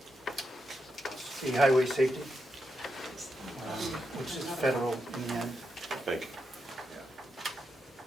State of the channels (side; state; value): both; normal; correlation 0.85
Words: The highway safety, which is federal in the end. Thank you.